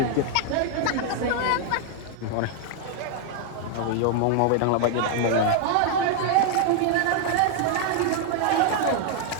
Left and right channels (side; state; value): both; different; correlation 0.00